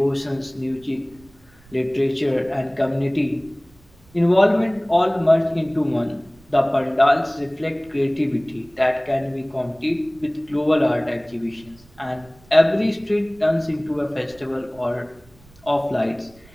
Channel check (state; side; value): noise; right; rumble, 27 dB below the sound